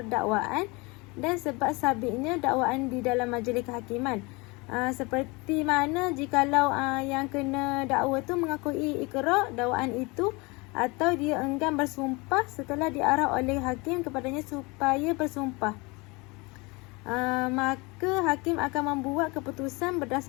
dakwaan dan sebab sabitnya dakwaan di dalam majlis kehakiman. Seperti mana jikalau yang kena dakwa tu mengakui ikrar dakwaan itu, atau dia enggan bersumpah setelah diarah oleh hakim kepadanya supaya bersumpah, maka hakim akan membuat keputusan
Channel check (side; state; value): right; quieter; 26.4 dB